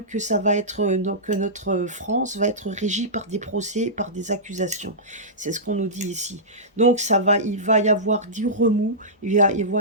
que ça va être, donc que notre France va être régie par des procès, par des accusations. C'est ce qu'on nous dit ici. Donc il va y avoir du remous, il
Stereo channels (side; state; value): both; normal; correlation -0.16